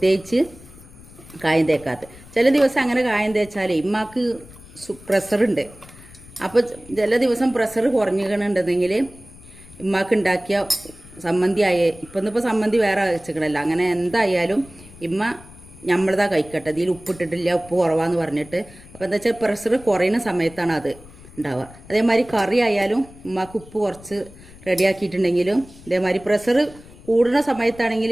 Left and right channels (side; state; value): left; noise; rumble, 21 dB below the sound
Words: കായം തേക്കാത്തത്. ചില ദിവസം അങ്ങനെ കായം തേച്ചാൽ ഉമ്മാക്ക് പ്രഷറുണ്ട്. അപ്പോൾ ചില ദിവസം പ്രഷർ കുറഞ്ഞിട്ടുണ്ടെങ്കിൽ ഉമ്മാക്ക് ഉണ്ടാക്കിയ സമ്മന്തി ഇന്നിപ്പോൾ സമ്മന്തി വേറെ വെച്ചിക്കണല്ലോ. അങ്ങനെ എന്തായാലും ഇമ്മ നമ്മളതാ കഴിക്കട്ടെ, ഇതിൽ ഉപ്പിട്ടിട്ടില്ല, ഉപ്പ് കുറവാന്ന് പറഞ്ഞിട്ട്. അപ്പോൾ എന്താ വെച്ചാൽ പ്രഷർ കുറയുന്ന സമയത്താണ് അത് ഉണ്ടാവുക. അതേമാതിരി കറി ആയാലും ഉമ്മാക്ക് ഉപ്പ് കുറച്ച് റെഡിയാക്കിയിട്ടുണ്ടെങ്കിലും ഇതേമാതിരി പ്രഷർ കൂടുന്ന സമയത്താണെങ്കിൽ